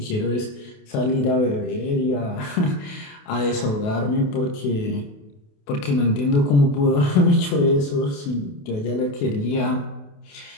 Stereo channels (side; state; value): right; late; 28 ms